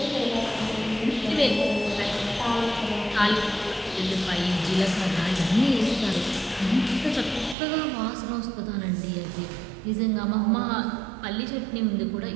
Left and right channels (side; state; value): left; drops out; at 7.6 s